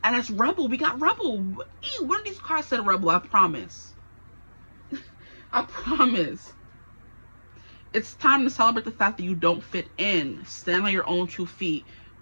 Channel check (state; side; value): inverted; both; correlation -1.00